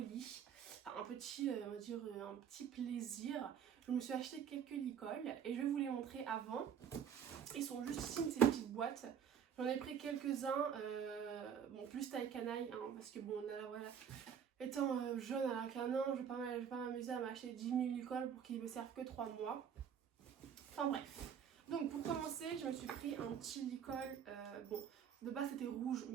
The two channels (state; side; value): quieter; left; 8.1 dB